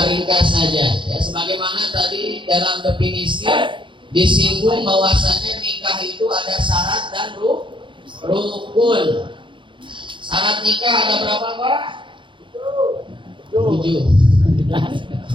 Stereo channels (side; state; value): left; late; 0.24 ms